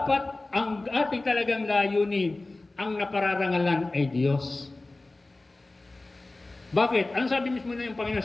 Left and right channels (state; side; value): quieter; right; 3.0 dB